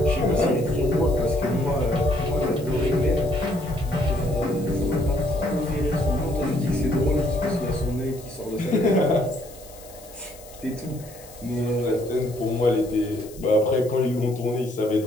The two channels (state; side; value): noise; left; hiss, 20 dB below the sound